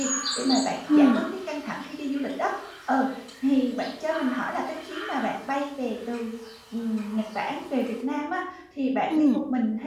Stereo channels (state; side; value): identical; both; correlation 1.00